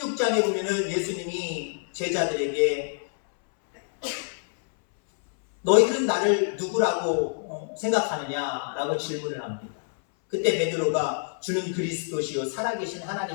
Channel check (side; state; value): right; silent; 61 dB below the other